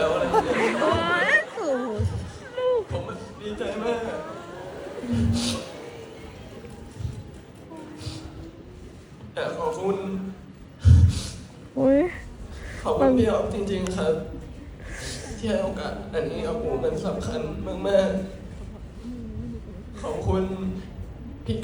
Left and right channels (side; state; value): both; identical; correlation 1.00